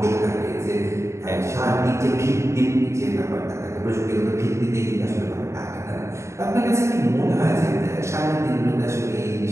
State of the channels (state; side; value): late; left; 0.14 ms